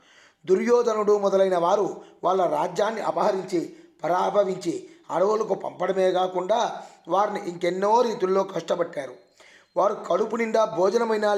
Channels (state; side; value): identical; both; correlation 1.00